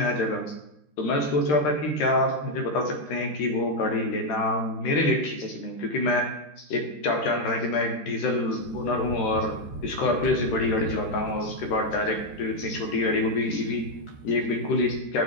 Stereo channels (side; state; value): right; late; 13 ms